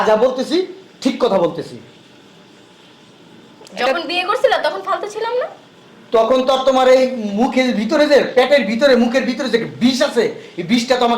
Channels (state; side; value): identical; both; correlation 1.00